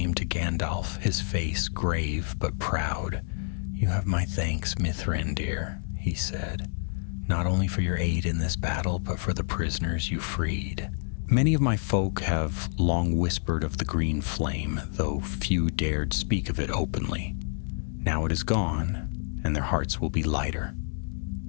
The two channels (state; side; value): silent; right; 59 dB below the other